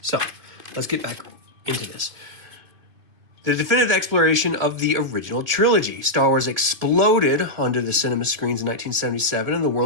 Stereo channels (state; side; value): late; left; 2.8 ms